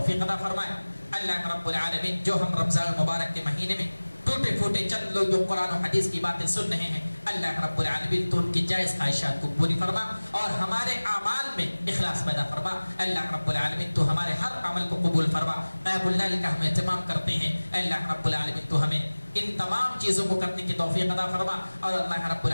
عطا فرمائے۔ اللہ رب العالمین جو ہم رمضان المبارک کے مہینے میں ٹوٹے پھوٹے چند لوگ جو قرآن و حدیث کی باتیں سن رہے ہیں، اللہ رب العالمین تو ان کی جائز خواہشات کو پوری فرما اور ہمارے اعمال میں اخلاص پیدا فرما۔ اللہ رب العالمین تو ہمارے ہر عمل کو قبول فرما۔ قیام اللیل کا ہم اہتمام کرتے ہیں، اللہ رب العالمین تو ہمیں ان تمام چیزوں کو کرنے کی توفیق عطا فرما۔ اور اللہ رب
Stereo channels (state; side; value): inverted; both; correlation -1.00